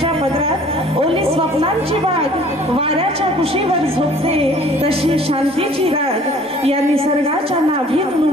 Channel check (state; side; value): normal; both; correlation 0.53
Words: पदरात ओली स्वप्नांची बाग, वाऱ्याच्या कुशीवर झोपते तशी शांतीची राग। या निसर्गाच्या नाभीत